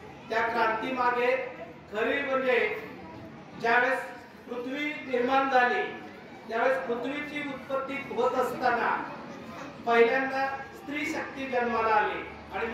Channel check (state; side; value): identical; both; correlation 1.00